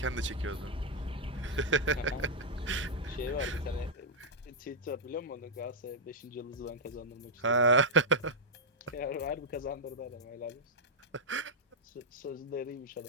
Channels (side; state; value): both; normal; correlation -0.05